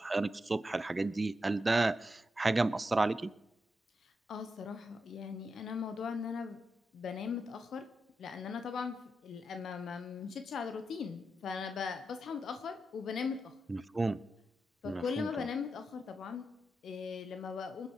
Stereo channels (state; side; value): normal; both; correlation 0.86